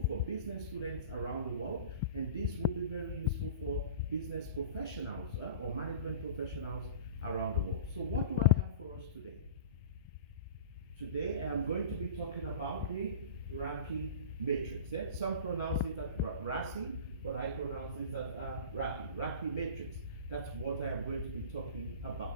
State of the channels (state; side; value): inverted; both; correlation -0.37